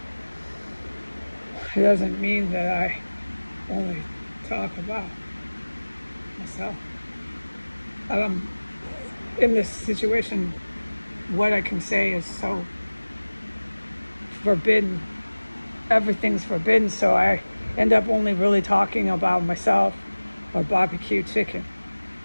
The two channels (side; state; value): both; inverted; correlation -1.00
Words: It doesn't mean that I only talk about myself. In this situation, what I can say is so forbidden. Everything's forbidden, so I end up only really talking about myself or barbecue chicken.